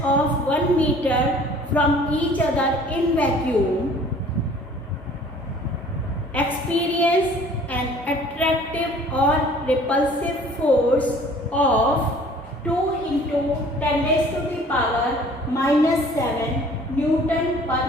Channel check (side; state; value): both; normal; correlation 0.51